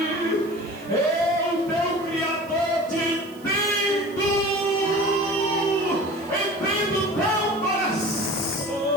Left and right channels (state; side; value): noise; right; hiss, 24 dB below the sound